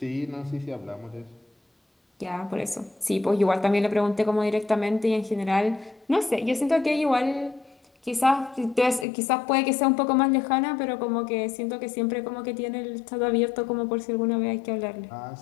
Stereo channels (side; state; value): right; drops out; at 9.1 s